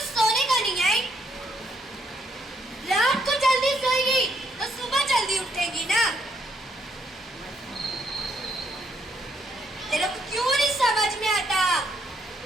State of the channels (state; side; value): normal; both; correlation 0.72